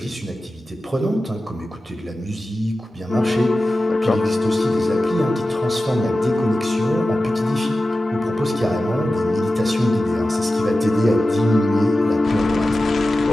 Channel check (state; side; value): normal; both; correlation 0.94